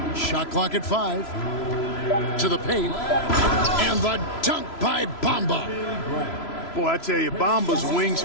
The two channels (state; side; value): late; right; 3.0 ms